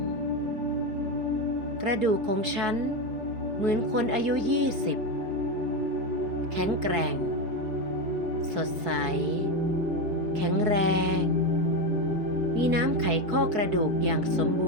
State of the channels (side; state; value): left; late; 4.6 ms